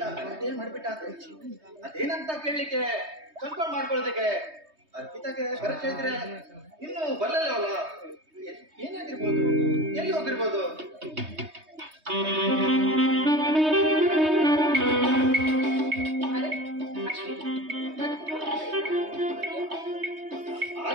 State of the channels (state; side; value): late; left; 3.2 ms